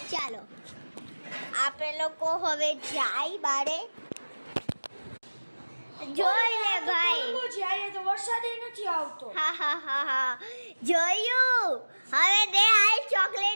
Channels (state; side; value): inverted; both; correlation -1.00